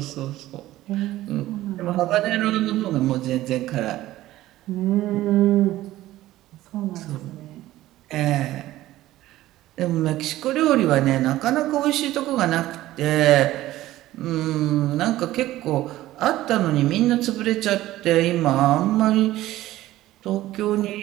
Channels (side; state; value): left; quieter; 15.5 dB